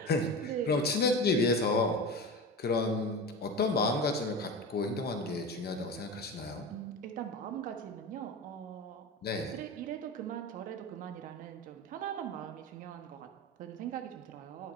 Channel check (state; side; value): normal; both; correlation 0.27